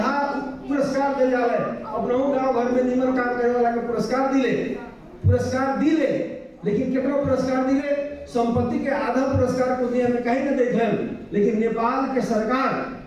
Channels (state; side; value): identical; both; correlation 1.00